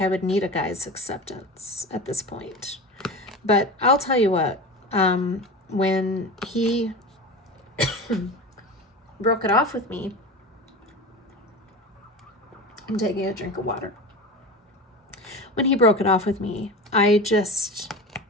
I would need a guy's acceptance at this point. But I'll tell you what, when he broke it off with me, I'm taking a drink of water. When he broke it off with me, I just,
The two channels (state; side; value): normal; both; correlation 0.29